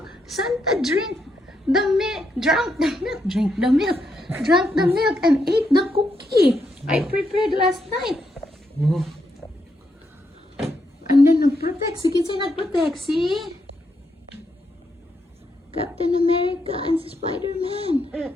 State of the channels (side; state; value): both; normal; correlation 0.80